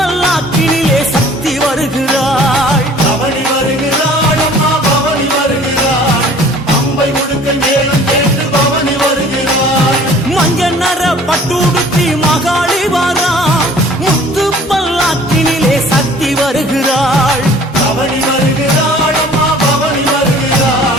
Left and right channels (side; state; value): both; normal; correlation 0.50